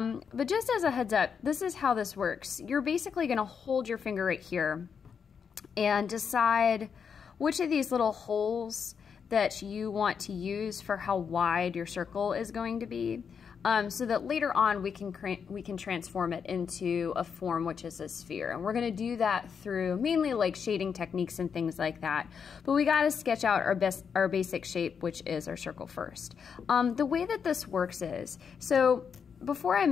just as a heads up, this is how this works. You're basically gonna hold your finger right here and decide which of these little holes that you want to use for how wide your circle is going to be, so that later on we can transform it into a form which is a sphere. And we're going to do that through mainly like shading techniques and things like that. But we got to sketch out our basic shape, which is our circle first. The way that this works is, so before I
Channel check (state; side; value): quieter; right; 6.6 dB